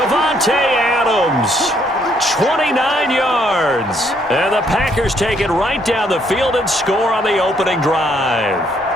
Adams, 29 yards. And the Packers take it right down the field and score on the opening drive.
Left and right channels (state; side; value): normal; both; correlation 0.69